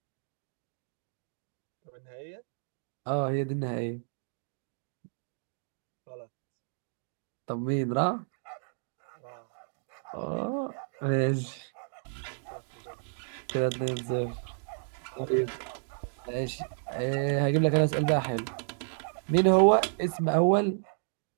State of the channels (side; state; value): left; silent; digital silence